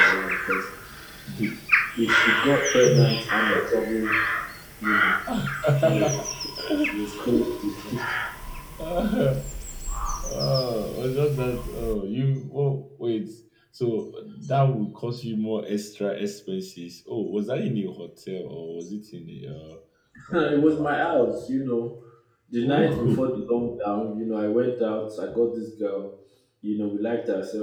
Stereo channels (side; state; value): both; identical; correlation 1.00